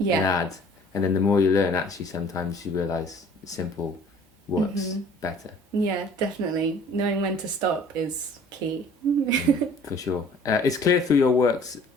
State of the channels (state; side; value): normal; both; correlation 0.51